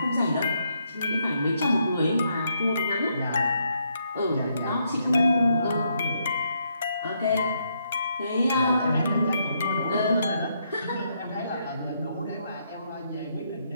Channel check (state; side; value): inverted; both; correlation -0.76